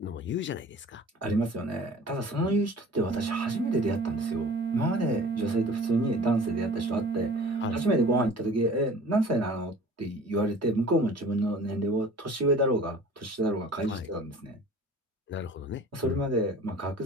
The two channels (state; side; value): normal; both; correlation 0.45